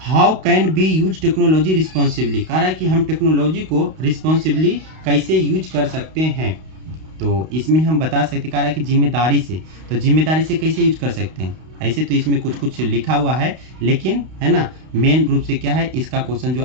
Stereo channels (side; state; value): left; late; 32 ms